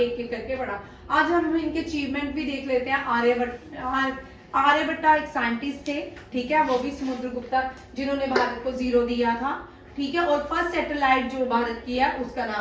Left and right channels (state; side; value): identical; both; correlation 1.00